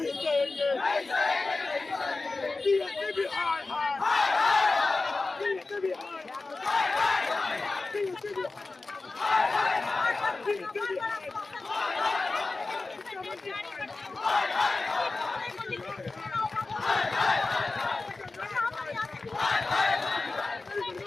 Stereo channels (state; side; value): quieter; right; 3.5 dB